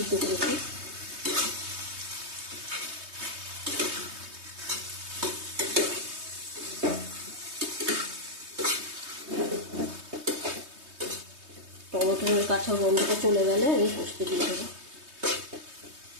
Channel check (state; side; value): late; left; 3.2 ms